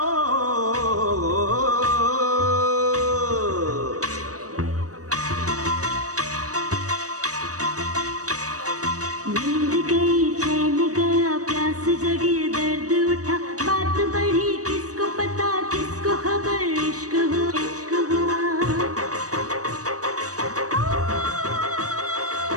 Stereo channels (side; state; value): left; late; 0.66 ms